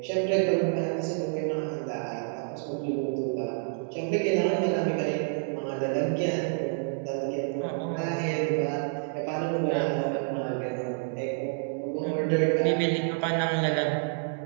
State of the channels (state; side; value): silent; left; digital silence